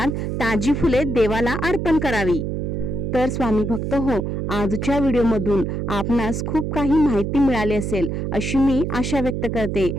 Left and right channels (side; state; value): right; noise; hum, 2 dB below the sound